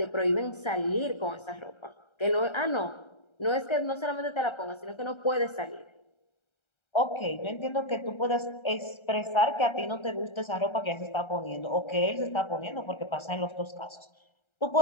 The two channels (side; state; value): right; late; 1.3 ms